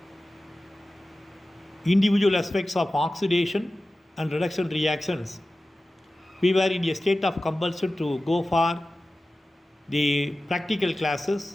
individual aspects of oxidation and reduction reactions, we were in a state of compulsion to go for the practical classes,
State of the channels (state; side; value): normal; both; correlation 0.95